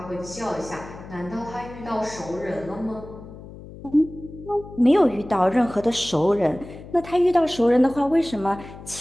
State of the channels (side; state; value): left; noise; hum, 16 dB below the sound